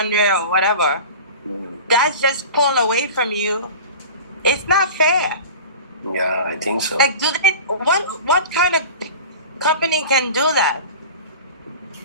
or whatever, that's just pulled away from you. It's not fair. Yeah, I think so. Like, what kind of company can do that?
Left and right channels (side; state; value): both; inverted; correlation -0.36